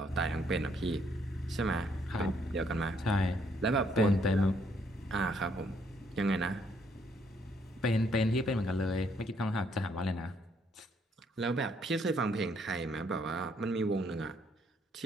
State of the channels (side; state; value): both; normal; correlation 0.69